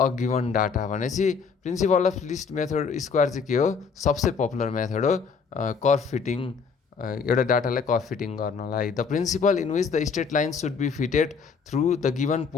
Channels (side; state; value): right; quieter; 5.6 dB